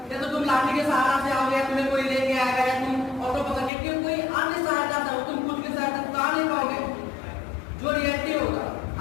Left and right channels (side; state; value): right; drops out; at 3.7 s